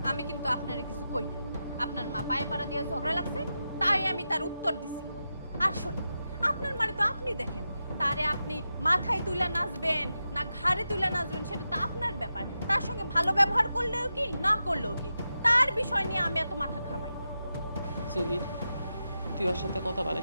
আমি কিন্তু আপনারে কিছু কই না। আপনার মা পায়ে পাড়া দিয়ে ঝগড়া লাগছে, তাই আমি তার উত্তর দিছি। আর শোনেন, আপনার মানে তো আপনি দেখেন, তারে আপনি মাথায় তুলে নাচবেন না ঘাড়ে তুলে নাচবেন সেটা তো আপনার ব্যাপার। তার সঙ্গে ভালো ব্যবহার করলেও কি, না করলেও কি, তার বিষয় নিয়ে আমি এত মাথা ঘামাই না। জহির, তুই ওর সাথে কথা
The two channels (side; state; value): both; inverted; correlation -0.89